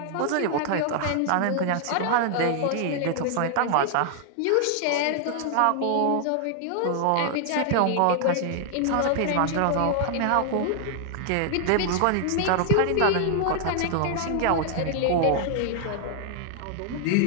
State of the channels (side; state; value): both; different; correlation 0.00